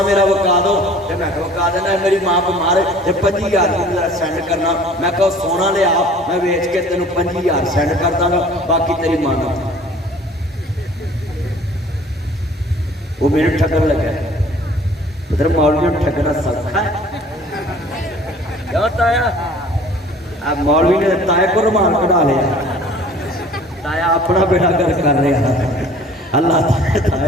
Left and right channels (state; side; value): normal; both; correlation 0.49